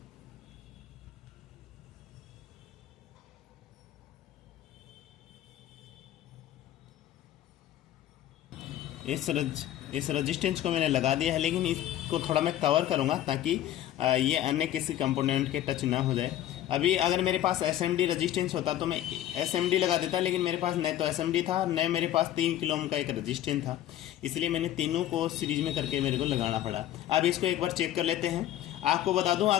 इस रजिस्टेंस को मैंने लगा दिया है, लेकिन इसको थोड़ा मैं कवर करूँगा ताकि ये अन्य किसी कंपोनेंट के टच ना हो जाए। अभी अगर मेरे पास SMD रजिस्टेंस होता तो मैं SMD लगा देता, लेकिन मेरे पास न तो SMD था न मेरे पास 3 किलो ओम का एक रजिस्टेंस था, इसलिए मैंने तीनों को सीरीज में करके मेरे को लगाना पड़ा। अब इसको एक बार चेक कर लेते हैं। आपको बता दूँ,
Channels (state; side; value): quieter; right; 12.6 dB